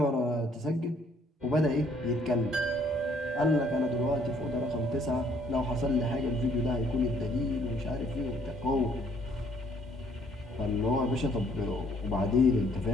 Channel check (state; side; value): normal; both; correlation 0.64